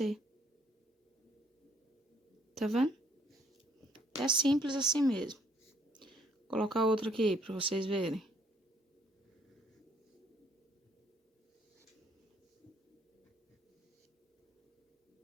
Tá vendo? É simples assim mesmo. Vou colocar outro aqui para vocês verem.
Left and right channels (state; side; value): normal; both; correlation 0.64